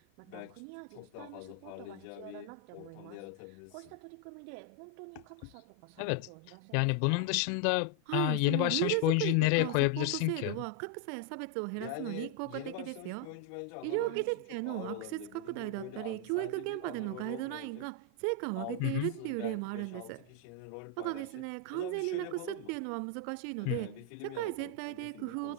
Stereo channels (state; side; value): different; both; correlation 0.01